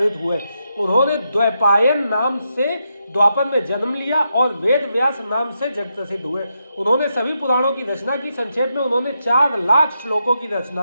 हुए। उन्होंने द्वैपायन नाम से द्वापर में जन्म लिया और वेद व्यास नाम से जग प्रसिद्ध हुए। उन्होंने सभी पुराणों की रचना की। संक्षेप में उन्होंने 4 लाख श्लोकों की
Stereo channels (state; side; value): inverted; both; correlation -0.84